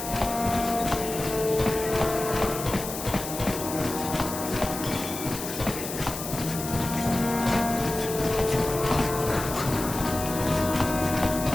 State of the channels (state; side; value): noise; left; hiss, 8 dB below the sound